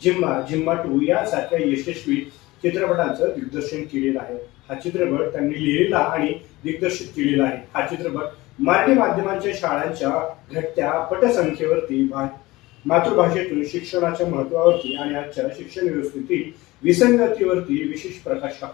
जिम्मा जिम्मा 2 यासारख्या यशस्वी चित्रपटांचं दिग्दर्शन केलेलं आहे. हा चित्रपट त्यांनी लिहिलेला आणि दिग्दर्शित केलेला आहे. हा चित्रपट मराठी माध्यमांच्या शाळांच्या घटत्या पटसंख्येवरती मातृभाषेतून शिक्षणाच्या महत्वावरती आणि आजच्या शिक्षण व्यवस्थेतील विसंगतीवरती विशेष प्रकाश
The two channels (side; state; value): right; quieter; 20.1 dB